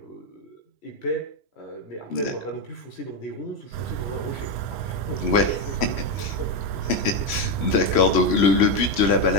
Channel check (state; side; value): late; right; 3.0 ms